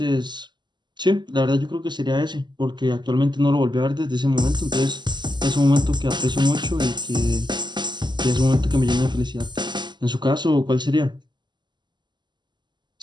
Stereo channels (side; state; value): left; late; 0.21 ms